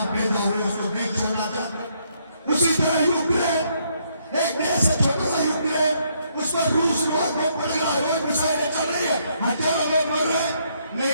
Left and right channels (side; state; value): both; inverted; correlation -0.72